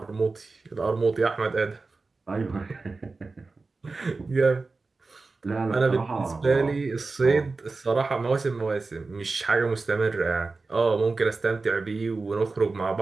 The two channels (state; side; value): quieter; left; 3.8 dB